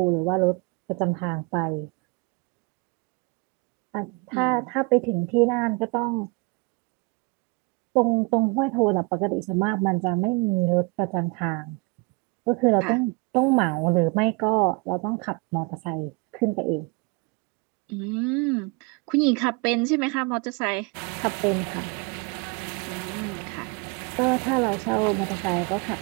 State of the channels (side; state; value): left; quieter; 26.9 dB